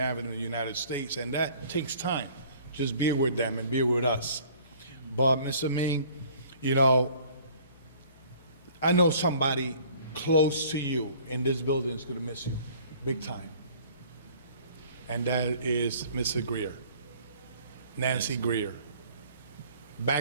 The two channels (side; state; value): both; inverted; correlation -0.53